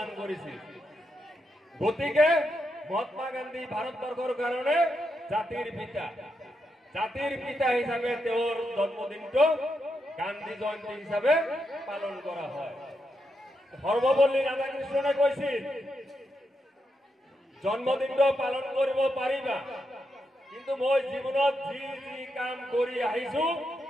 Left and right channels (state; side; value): normal; both; correlation 0.84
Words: কৰিছিল গতিকে মহাত্মা গান্ধী ভাৰতবৰ্ষৰ কাৰণে জাতিৰ পিতা হিচাপে তেওঁৰ জন্মদিনটো গান্ধী জয়ন্তী হিচাপে পালন কৰা হয় সৰ্বপল্লী ৰাধাকৃষ্ণনে কৈছিল জন্মদিনটো পালন কৰিব পাৰিবা কিন্তু মই জীৱনত যি যি কাম কৰি আহিছো